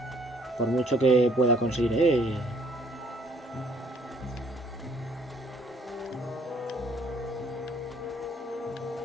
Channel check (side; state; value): both; normal; correlation 0.62